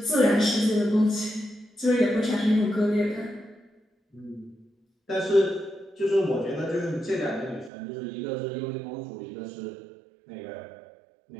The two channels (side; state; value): left; drops out; at 7.7 s